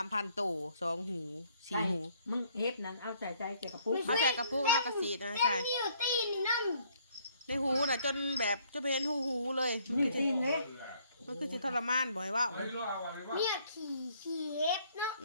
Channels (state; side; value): inverted; both; correlation -0.65